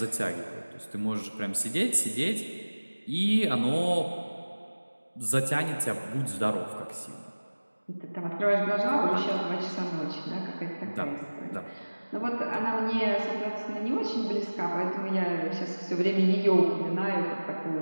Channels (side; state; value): both; inverted; correlation -1.00